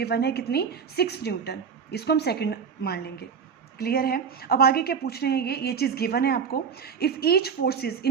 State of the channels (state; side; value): quieter; left; 6.5 dB